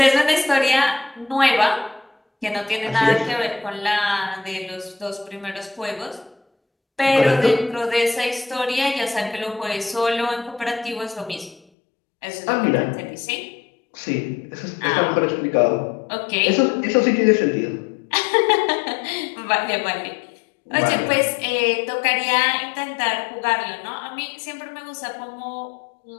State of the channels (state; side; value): drops out; right; at 11.6 s